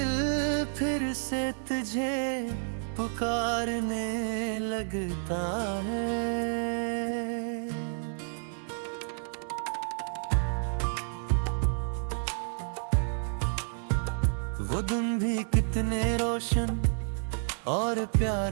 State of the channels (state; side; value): silent; left; digital silence